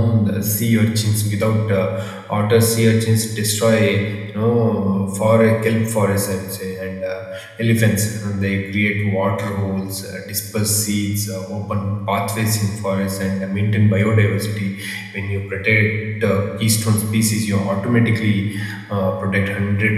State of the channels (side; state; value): both; identical; correlation 1.00